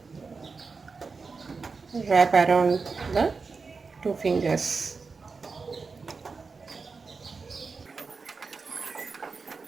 wrap around the 2 fingers.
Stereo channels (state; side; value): quieter; left; 4.6 dB